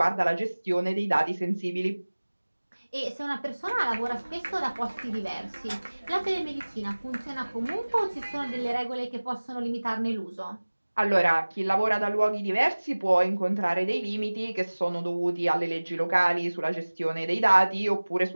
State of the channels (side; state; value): both; inverted; correlation -1.00